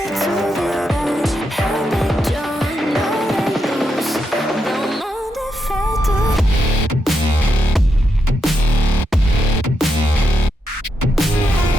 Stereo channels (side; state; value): both; normal; correlation 0.83